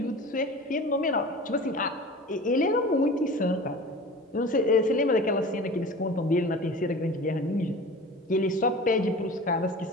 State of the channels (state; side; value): normal; both; correlation 0.37